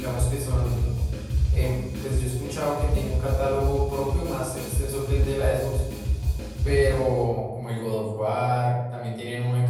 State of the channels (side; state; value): both; identical; correlation 1.00